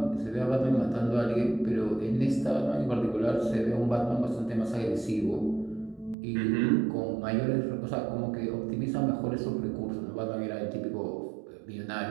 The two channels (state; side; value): drops out; left; at 6.2 s